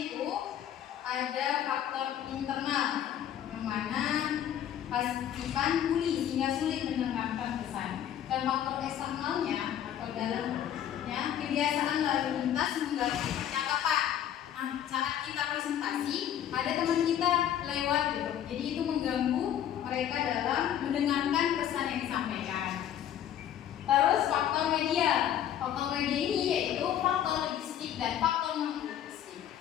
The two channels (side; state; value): right; quieter; 10.4 dB